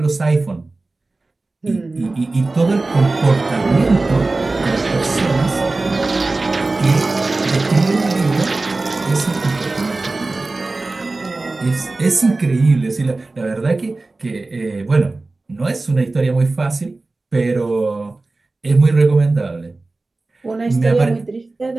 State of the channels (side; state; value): left; quieter; 3.3 dB